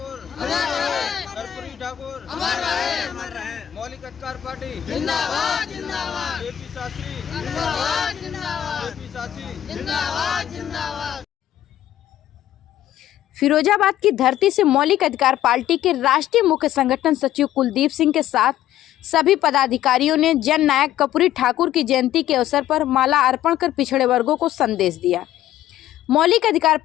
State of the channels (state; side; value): quieter; right; 12.2 dB